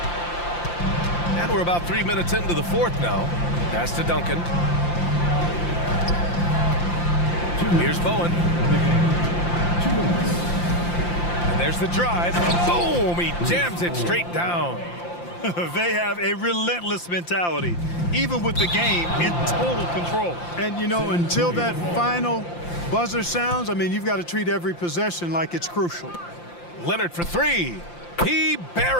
And we're about 3 minutes into the fourth now. Pass to Duncan. Here's Bowen. And there's the drive. Boom! He jams it straight down. They have a relentless mentality, even with the game in total control. And, you know, until that final buzzer sounds, I mean, you've got to treat every possession like it's crucial. Leonard for three. He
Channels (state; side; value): late; right; 5.8 ms